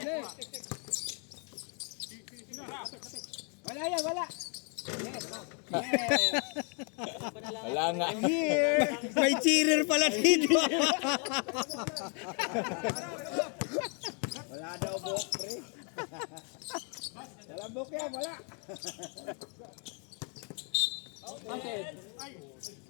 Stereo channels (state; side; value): quieter; right; 38.4 dB